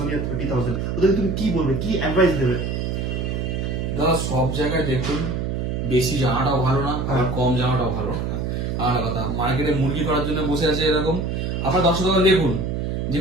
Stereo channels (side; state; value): right; noise; hum, 1 dB below the sound